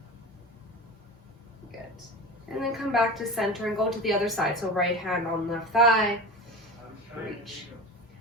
Good. And then come back to center and go to the other side. So right hand on left thigh. Reach.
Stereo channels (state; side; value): normal; both; correlation 0.30